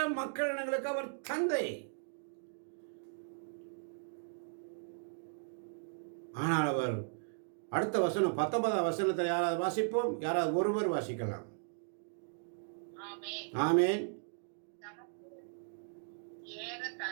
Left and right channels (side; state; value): left; silent; digital silence